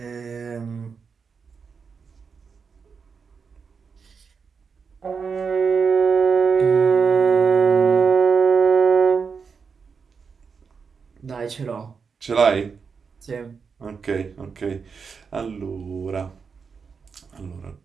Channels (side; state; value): left; quieter; 5.7 dB